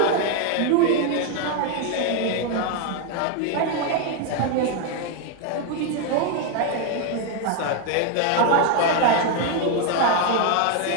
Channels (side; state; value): both; different; correlation 0.01